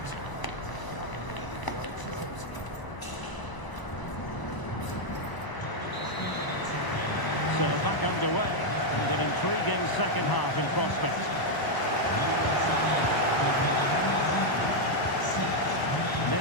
underway, and an intriguing second half in prospect.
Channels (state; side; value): late; right; 1.0 ms